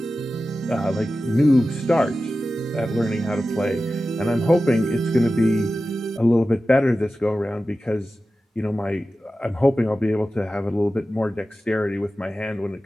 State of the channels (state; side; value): normal; both; correlation 0.94